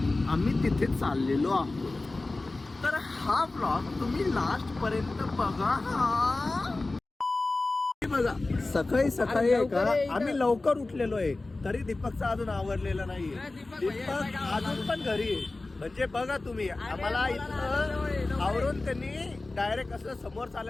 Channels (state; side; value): quieter; right; 3.2 dB